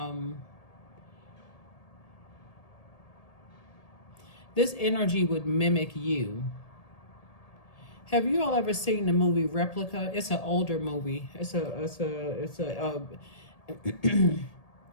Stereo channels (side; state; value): right; late; 1.8 ms